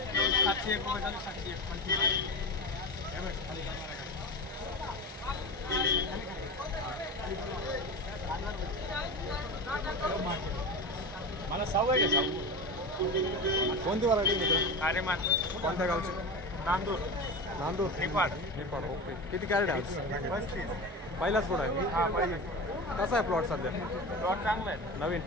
701 रुपये झाले 701 मला सवय आहे कोणती व्हरायटी मित्र? अरे मान कोणत्या गावची? नांदूर नांदूर निपाड निपाड. ओके. किती कॅरेट आहे आज? 35 पहिलाच प्लॉट आहे. हा पहिले कसा आहे प्लॉट सध्या प्लॉट चांगला आहे नवीन?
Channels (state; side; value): normal; both; correlation 0.26